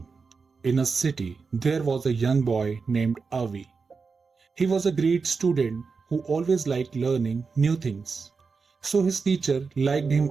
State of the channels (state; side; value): quieter; left; 4.9 dB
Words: in a city, there was a young boy named Avi. He was a great student who always liked learning new things, so his teacher liked him